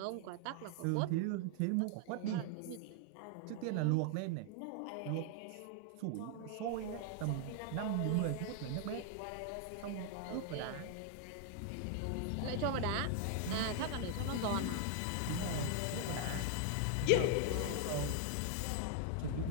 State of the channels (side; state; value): both; different; correlation 0.00